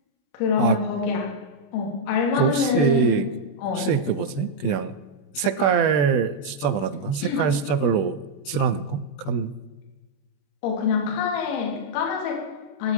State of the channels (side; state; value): right; late; 21 ms